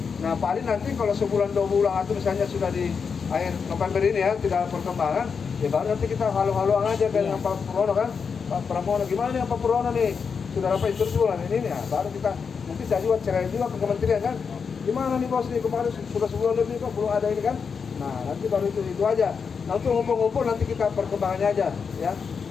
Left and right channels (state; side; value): quieter; right; 5.9 dB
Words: Nah paling nanti kalau sebulan 2 bulan atau misalnya sudah di akhir November ini ya tidak ada perkembangan, ya baru nanti kita halu-haluan aja dengan Pak Pramono kan. Pak Pramono gimana nih Pak Pramono nih? Sudah dapat instruksi bulan ini ya. Baru kita mungkin saya juga cerai juga ke kementerian kan. Gimana nih bos nih kemarin sudah sebulan lebih kok belum ada ini kan? Nah nanti baru itu aja. Nah untuk ngumpul-ngumpul nanti kita perkembangannya aja ya.